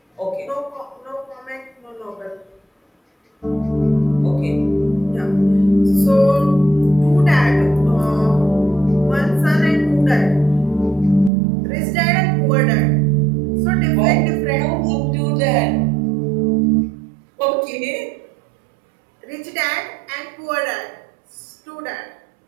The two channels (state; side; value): drops out; left; at 11.3 s